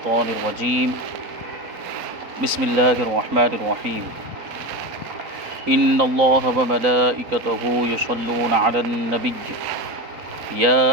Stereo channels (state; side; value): late; left; 3.9 ms